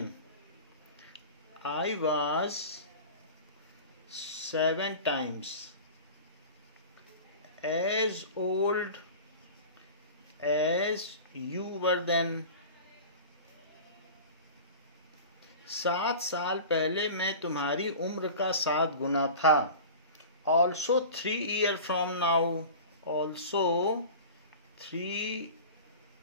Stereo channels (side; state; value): both; inverted; correlation -0.36